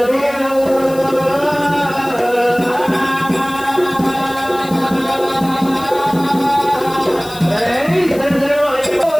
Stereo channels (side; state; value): left; noise; hiss, 18 dB below the sound